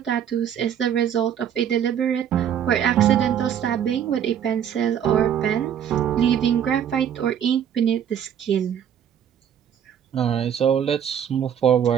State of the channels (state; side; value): quieter; left; 9.2 dB